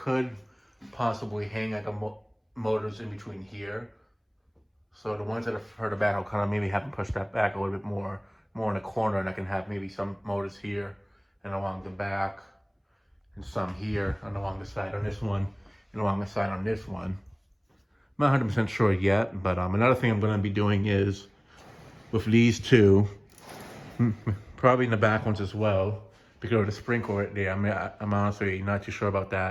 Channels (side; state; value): both; identical; correlation 1.00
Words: possibly hang like motors in between here. So the ones that are further back, I'll kind of maybe have them push that back a little bit more in the corner, and I can have maybe some motors here and along the back, and some here and along the side on this one, and along the side on this one. I'm not 100% sure yet, but another thing I'm going to be doing is with these two, probably in the back ones as well, because of the sprinkler right there. I'm honestly not too sure about